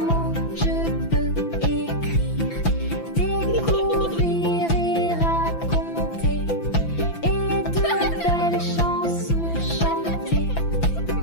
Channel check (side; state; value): right; late; 5.9 ms